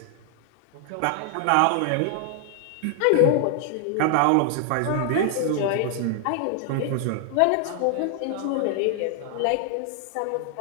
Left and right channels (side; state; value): both; different; correlation 0.00